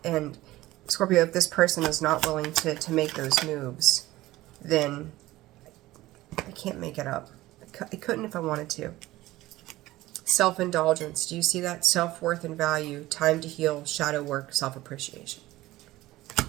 And Scorpio, if this person is not willing to make those moves, then I can't make it up. I couldn't if I wanted to. Self-indulgence. Do you see that? Self-worth and value. Time to heal. Shadow work. Self-appreciation.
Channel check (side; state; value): left; quieter; 17.2 dB